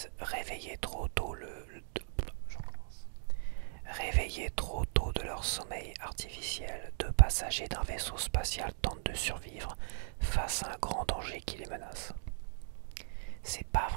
Réveillés trop tôt de leur sommeil artificiel, deux passagers d'un vaisseau spatial tentent de survivre face à un grand danger qui les menace. C'est pas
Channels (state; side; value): silent; left; digital silence